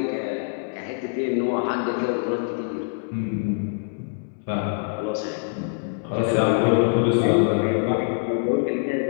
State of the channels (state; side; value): silent; right; digital silence